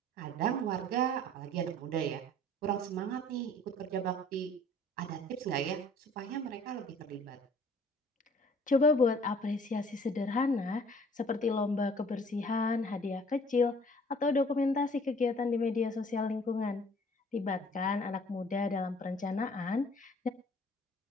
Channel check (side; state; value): both; normal; correlation 0.54